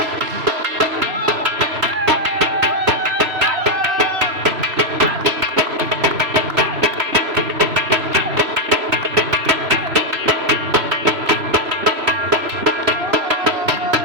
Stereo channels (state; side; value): late; left; 3.0 ms